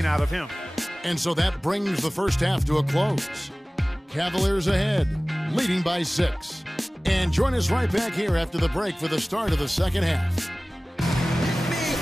out of him. And so that brings the first half to a close. Cavaliers ahead, leading by 6. And join us right back here after the break for the start of the second half.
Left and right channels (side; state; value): both; normal; correlation 0.98